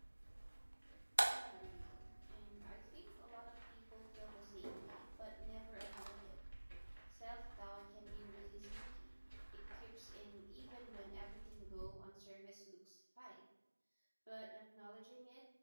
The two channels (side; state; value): both; inverted; correlation -1.00